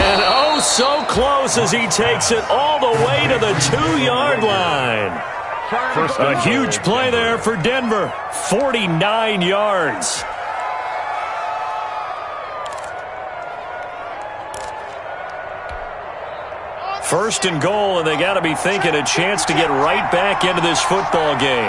oh, so close as he takes it all the way to the 2-yard line. A huge play there for Denver. 49 yards. First and goal, and they got to be thinking a chance to get right back into this football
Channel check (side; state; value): both; identical; correlation 1.00